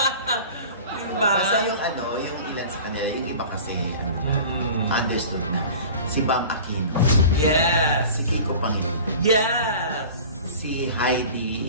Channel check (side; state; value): both; inverted; correlation -0.39